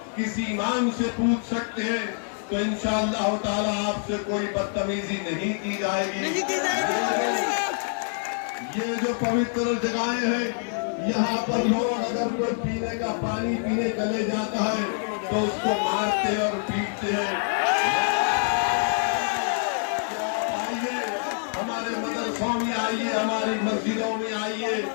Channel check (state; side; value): silent; right; digital silence